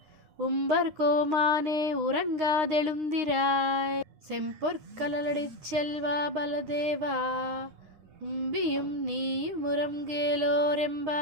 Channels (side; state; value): left; late; 9.7 ms